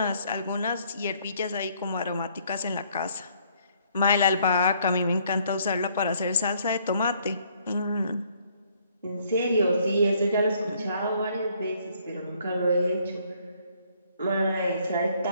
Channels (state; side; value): inverted; both; correlation -0.65